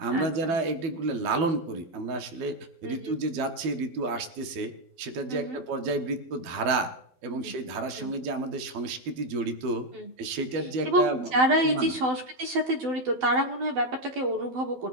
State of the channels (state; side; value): late; left; 12 ms